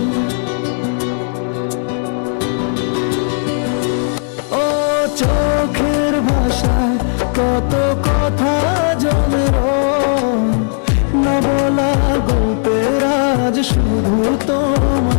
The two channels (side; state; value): right; silent; digital silence